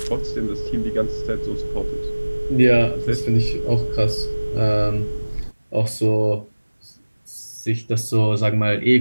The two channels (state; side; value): inverted; both; correlation -1.00